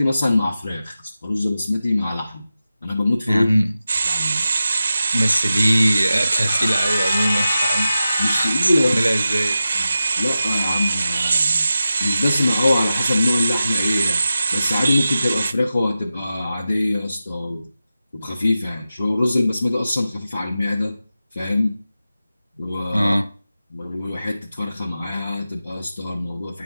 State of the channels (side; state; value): both; inverted; correlation -0.92